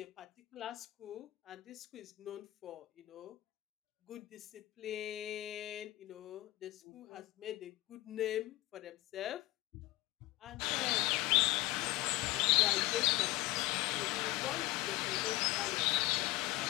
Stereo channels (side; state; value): right; quieter; 17.7 dB